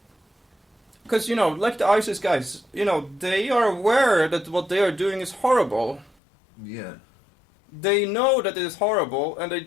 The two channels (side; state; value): right; drops out; at 6.2 s